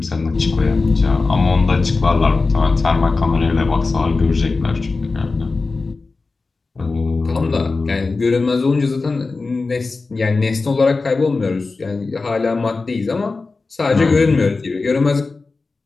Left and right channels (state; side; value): quieter; right; 3.9 dB